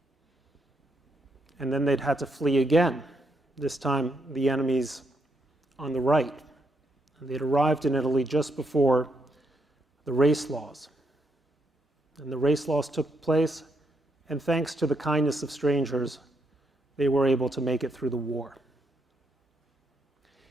And then they'd had to flee again, this time the enemies on the right. And they'd arrived in Italy just before the race laws. And the race laws took place, and thanks to the kindness of strangers, they were able to make it through the war.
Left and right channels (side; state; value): both; normal; correlation 0.77